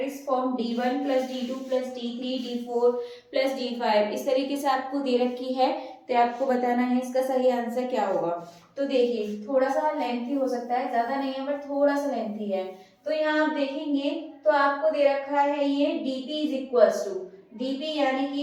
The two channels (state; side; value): identical; both; correlation 1.00